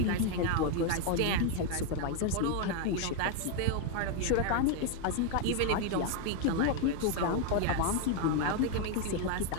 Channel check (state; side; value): different; both; correlation 0.01